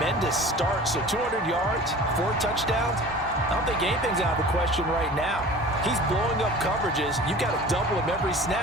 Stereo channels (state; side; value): normal; both; correlation 0.41